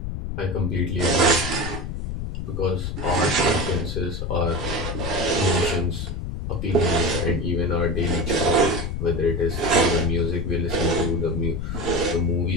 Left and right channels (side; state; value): left; noise; rumble, 4 dB below the sound